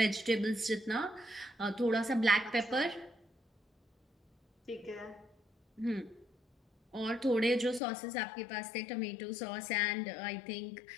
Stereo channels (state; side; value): drops out; right; at 7.8 s